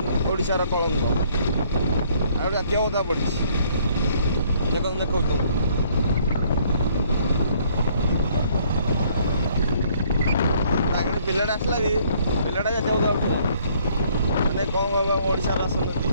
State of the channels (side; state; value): both; inverted; correlation -0.63